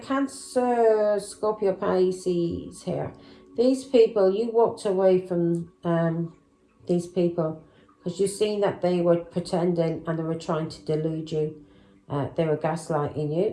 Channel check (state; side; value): identical; both; correlation 1.00